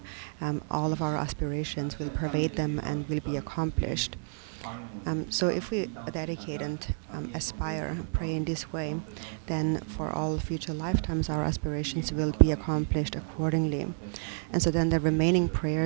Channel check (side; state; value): left; silent; 58 dB below the other